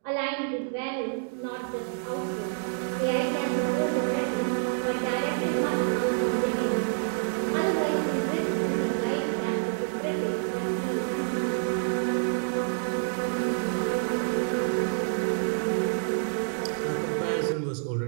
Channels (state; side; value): silent; left; digital silence